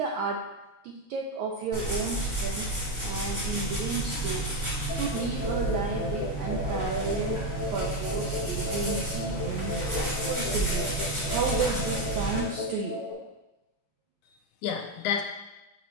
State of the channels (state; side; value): normal; both; correlation 0.09